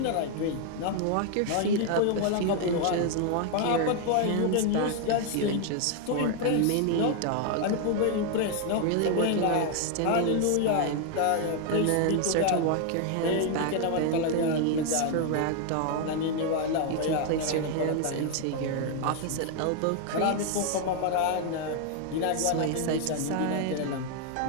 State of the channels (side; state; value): both; different; correlation 0.00